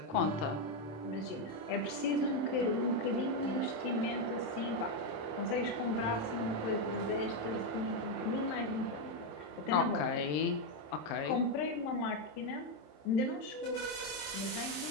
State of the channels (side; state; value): right; late; 27 ms